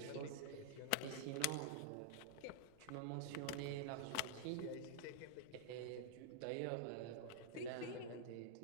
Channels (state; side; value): different; both; correlation -0.01